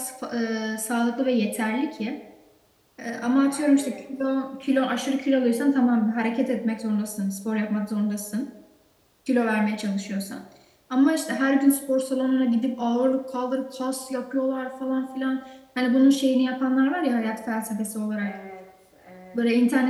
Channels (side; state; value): both; identical; correlation 1.00